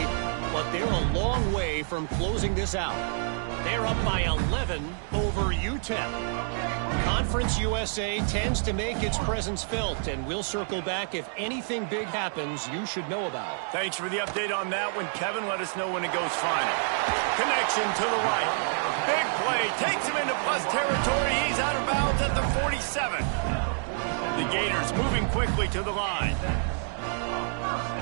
but they're a long way from closing this out. They're up by 11 over UTEP. Conference USA tends to make its presence felt, and we'll circle back if anything big happens you should know about. Thanks for the update on that one, Kevin. Let us know when it goes final. Connection to the right. Big play. Takes him into plus territory. He's out of bounds at the 47. The Gators moving quickly to the line.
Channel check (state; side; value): silent; left; 59 dB below the other